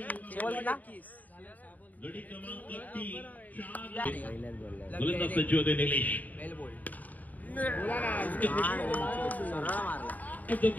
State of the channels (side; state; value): right; late; 0.078 ms